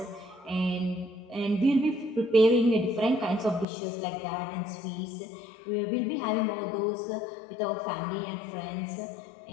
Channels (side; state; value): right; drops out; at 3.7 s